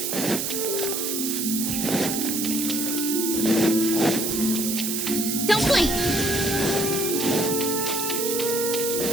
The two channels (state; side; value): noise; right; hiss, 1 dB below the sound